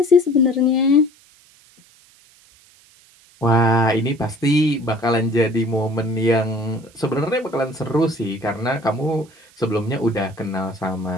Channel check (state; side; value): noise; right; hiss, 29 dB below the sound